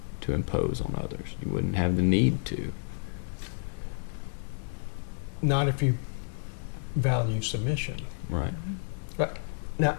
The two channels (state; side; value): silent; right; 57 dB below the other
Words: to impose on others. You wouldn't have the need to. Not if you value submission. Right. Right. Now,